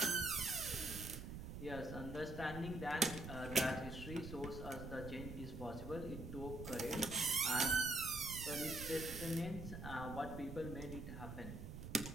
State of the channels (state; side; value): noise; right; rumble, 8 dB below the sound